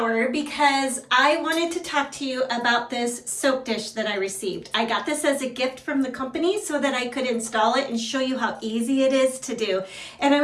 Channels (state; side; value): identical; both; correlation 1.00